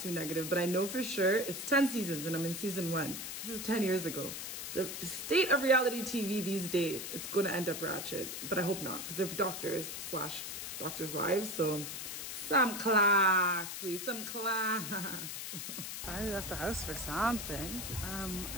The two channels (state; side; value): noise; left; hiss, 6 dB below the sound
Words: negative, but I know for sure it's 10 seasons and I'm in season 1. This is 10 years ago. The state of reality TV these days, it's going to end up ratchet, but I hope not because they're doctors / doctors' wives, so some class, please, some class. I left the house for something. I don't